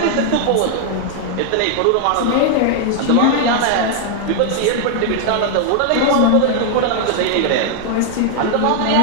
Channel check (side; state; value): both; different; correlation 0.00